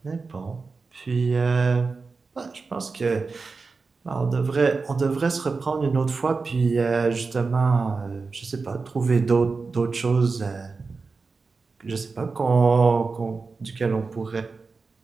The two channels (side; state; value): left; quieter; 4.3 dB